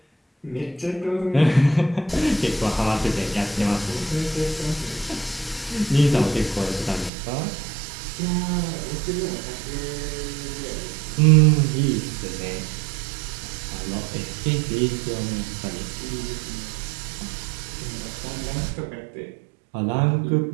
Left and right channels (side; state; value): left; drops out; at 7.1 s